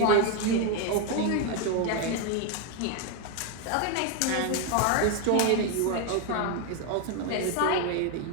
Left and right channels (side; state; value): both; different; correlation 0.01